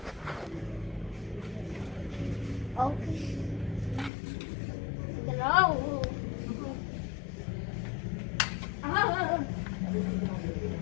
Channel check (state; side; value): drops out; right; at 4.1 s